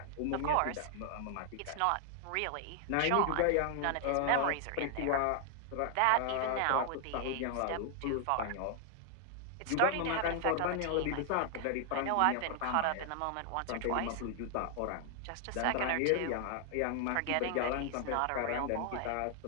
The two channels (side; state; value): both; different; correlation 0.00